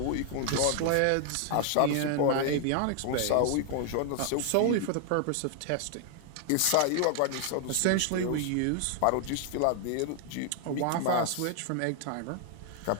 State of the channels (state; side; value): different; both; correlation 0.00